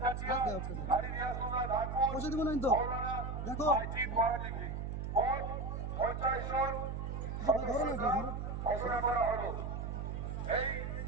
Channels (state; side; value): noise; right; hum, 4 dB below the sound